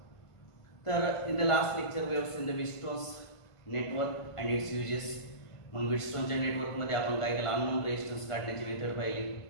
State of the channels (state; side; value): late; right; 1.5 ms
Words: तर in the last lecture we have seen the Wheatstone's network and its uses. मग व्हीटस्टोनच्या नेटवर्क मध्ये आपण काय केलं, अननोन रेजिस्टन्स काढण्याची मेथड पाहिली,